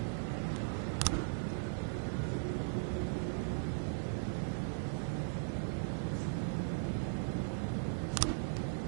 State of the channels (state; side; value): silent; left; 52 dB below the other